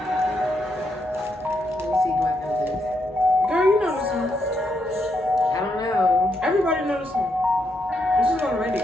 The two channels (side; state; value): both; normal; correlation 0.79